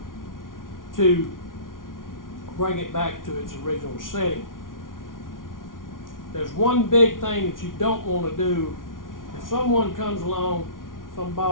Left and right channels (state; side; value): late; right; 0.89 ms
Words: to bring it back to its original setting. There's one big thing that you don't want to do. If someone comes along, some